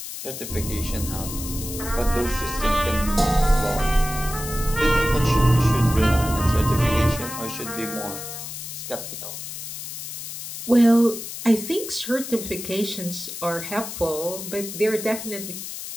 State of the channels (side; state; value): left; noise; hiss, 8 dB below the sound